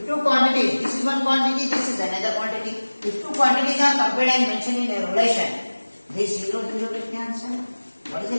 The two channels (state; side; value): inverted; both; correlation -1.00